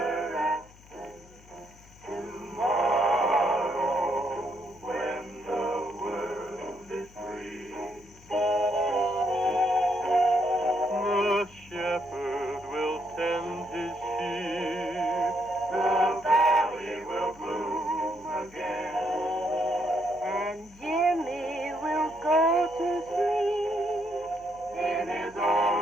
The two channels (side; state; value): left; noise; hum, 24 dB below the sound